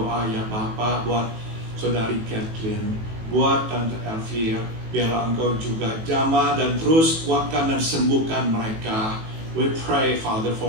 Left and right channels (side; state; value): left; late; 18 ms